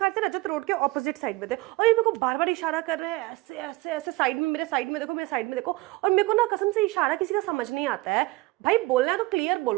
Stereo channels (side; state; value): left; quieter; 20.9 dB